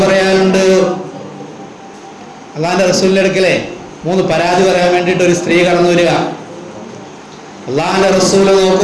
പറയാനുണ്ട്. അള്ളാന്റെ റസൂലിന്റെ അടുക്കലെ 3 പരാതി പറയാൻ വേണ്ടിയിട്ട് ഒരു സ്ത്രീ കടന്നു വരിക. അള്ളാന്റെ റസൂല്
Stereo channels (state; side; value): identical; both; correlation 1.00